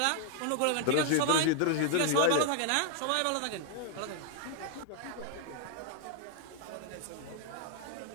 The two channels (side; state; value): both; different; correlation 0.00